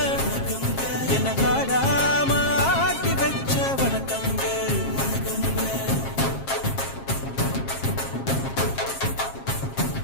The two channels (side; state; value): right; late; 7.4 ms